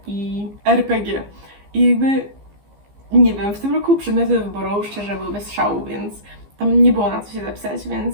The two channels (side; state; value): left; late; 15 ms